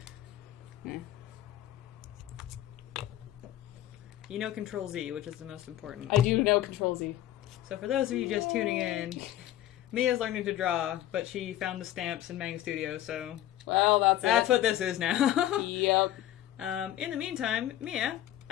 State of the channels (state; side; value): quieter; right; 13.1 dB